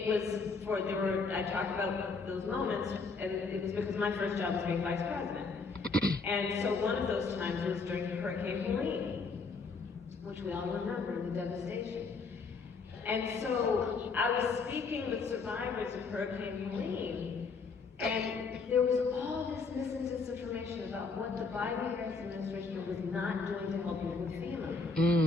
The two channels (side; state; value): right; quieter; 4.5 dB